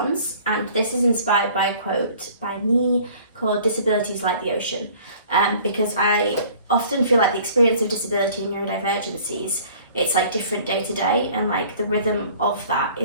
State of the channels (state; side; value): inverted; both; correlation -0.51